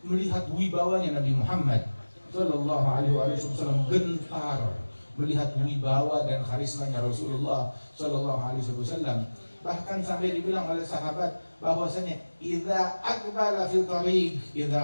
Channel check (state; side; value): inverted; both; correlation -1.00